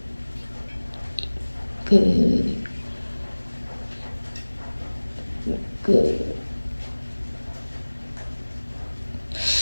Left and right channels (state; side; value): inverted; both; correlation -1.00